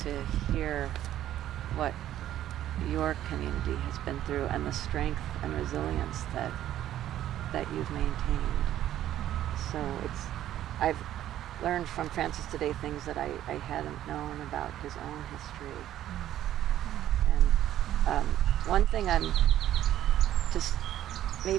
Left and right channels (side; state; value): left; quieter; 12.3 dB